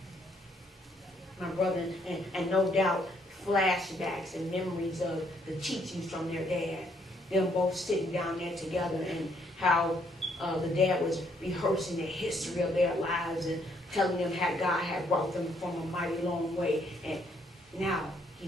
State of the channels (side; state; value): both; normal; correlation 0.69